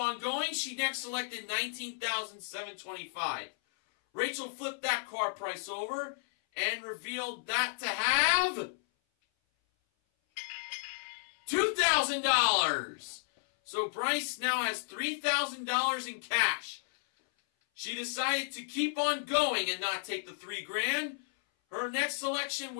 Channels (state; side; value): silent; right; 56 dB below the other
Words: going. She next selected $19,725. Rachel flipped that car price over and revealed that to have $2,000. So Bryce now has $3,000 in cash. She decided to keep on going and not take the $3,000. Her next selection